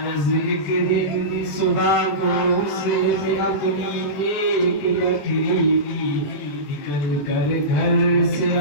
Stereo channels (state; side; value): late; right; 21 ms